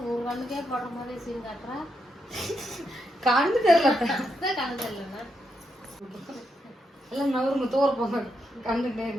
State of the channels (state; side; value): normal; both; correlation 0.82